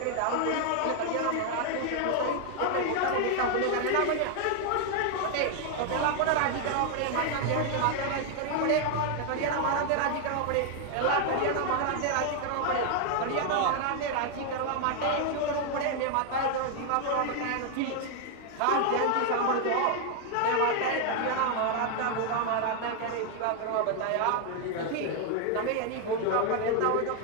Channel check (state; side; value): different; both; correlation 0.00